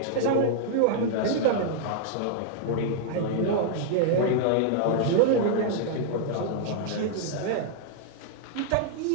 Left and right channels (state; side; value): different; both; correlation -0.01